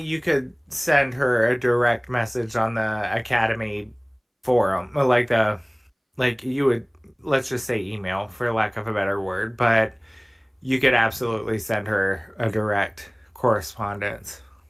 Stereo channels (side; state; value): both; identical; correlation 1.00